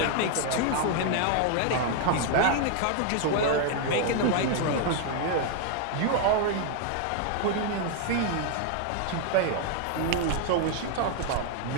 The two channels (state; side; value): different; both; correlation 0.00